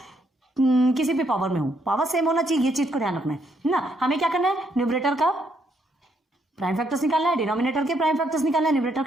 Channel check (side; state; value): both; normal; correlation 0.74